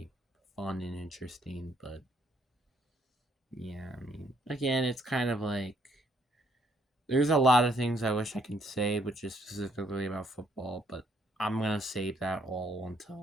fun and interesting. But yeah, I mean, again, it's kind of like there's a lot of things I wish I could say, which is specifically about football, but I'm gonna save that all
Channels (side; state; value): both; normal; correlation 0.69